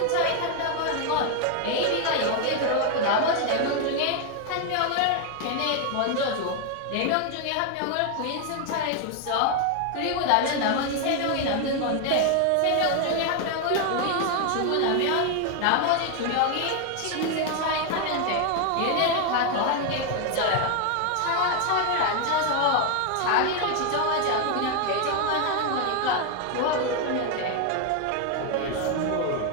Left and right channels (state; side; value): different; both; correlation 0.01